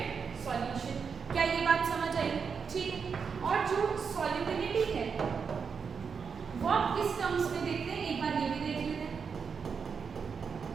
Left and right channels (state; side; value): quieter; left; 6.0 dB